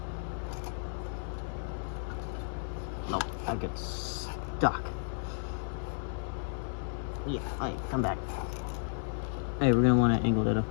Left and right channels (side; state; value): right; silent; digital silence